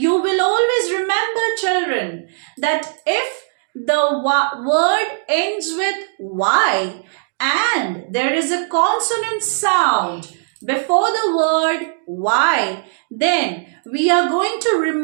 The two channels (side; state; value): left; silent; digital silence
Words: will always remember, children, that if the word ends with y and there is a consonant sound before the word y, then we are going to